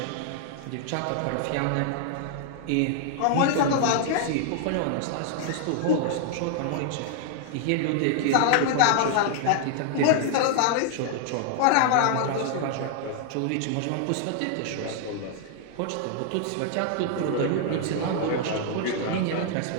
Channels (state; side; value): different; both; correlation 0.00